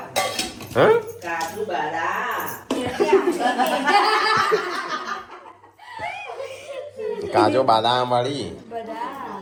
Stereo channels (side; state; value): both; identical; correlation 1.00